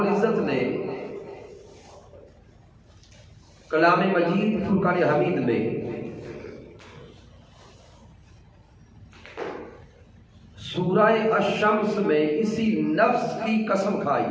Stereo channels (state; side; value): identical; both; correlation 1.00